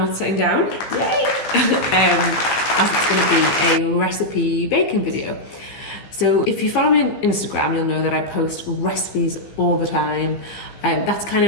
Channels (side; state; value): right; late; 15 ms